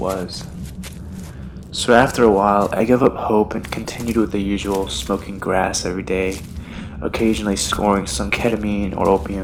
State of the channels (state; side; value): identical; both; correlation 1.00